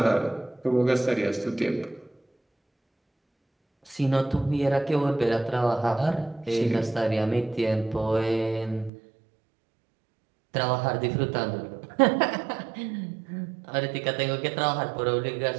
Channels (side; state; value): left; drops out; at 8.9 s